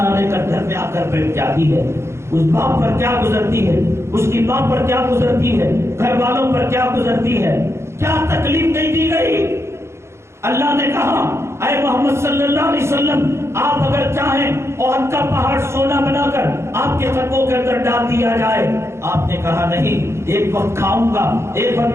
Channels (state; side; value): late; left; 0.13 ms